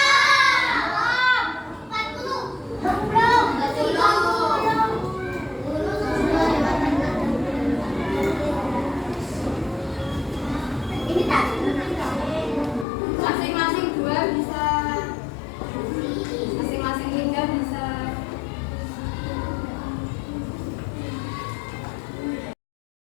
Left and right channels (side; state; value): right; drops out; at 12.9 s